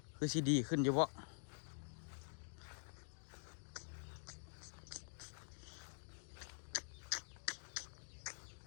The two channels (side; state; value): right; silent; digital silence